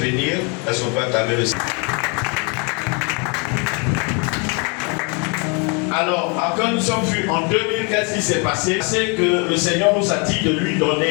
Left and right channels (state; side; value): quieter; right; 32.8 dB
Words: est-ce qu'on peut acclamer le Seigneur? Alors, quand nous sommes vus en 2000, qu'est-ce qui s'est passé? C'est que le Seigneur nous a dit de lui